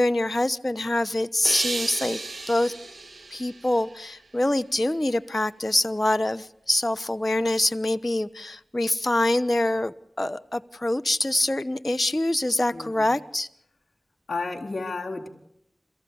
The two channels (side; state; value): both; normal; correlation 0.97